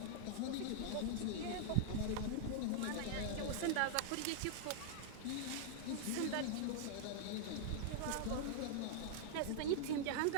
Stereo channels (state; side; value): different; both; correlation -0.01